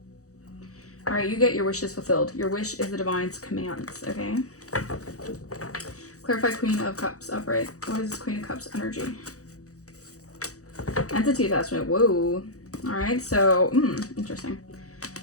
All right, you get your wishes fulfilled. Your wish is the divine's commands, okay? Clarify Queen of Cups upright. What is this Queen of Cups energy? Entity attachment. Whoa. All right, so, interesting.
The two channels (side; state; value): right; late; 0.65 ms